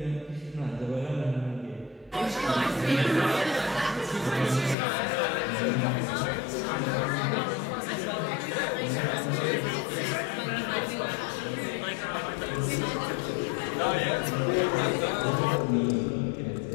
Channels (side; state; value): right; drops out; at 4.8 s